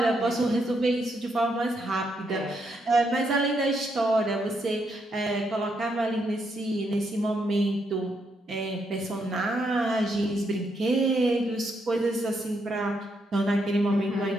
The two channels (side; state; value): both; normal; correlation 0.78